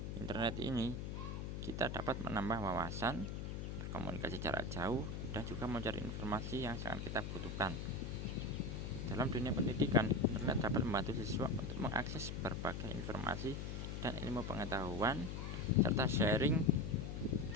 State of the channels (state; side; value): noise; left; hum, 4 dB below the sound